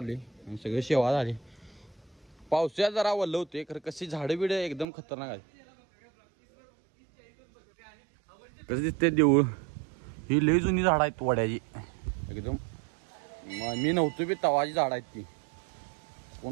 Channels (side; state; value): left; drops out; at 4.9 s